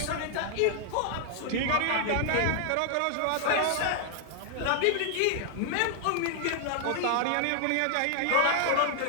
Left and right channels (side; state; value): both; different; correlation 0.00